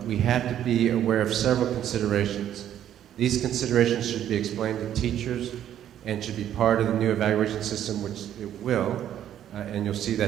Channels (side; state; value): left; quieter; 10.8 dB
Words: we have to be aware of several considerations. These considerations should be explained to teachers and should be part of the new evaluation system, which it will, and you'll see